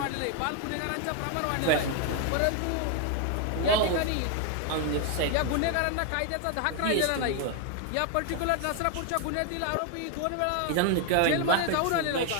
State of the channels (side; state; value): both; different; correlation 0.01